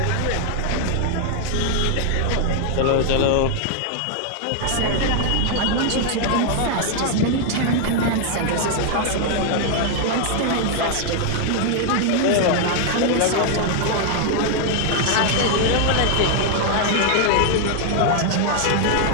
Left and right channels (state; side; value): different; both; correlation 0.00